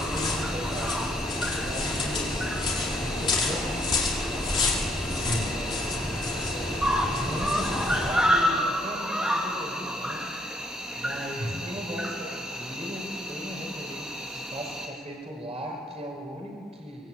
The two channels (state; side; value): normal; both; correlation 0.68